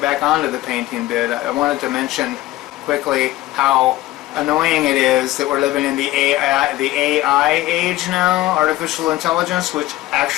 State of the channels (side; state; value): right; quieter; 16.3 dB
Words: back onto the painting bit, I wanted to mention quickly how annoying it is that we're living in the AI age now, artificial intelligence, which